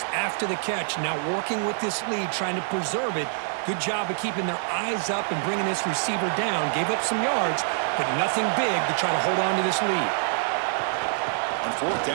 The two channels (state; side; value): silent; left; digital silence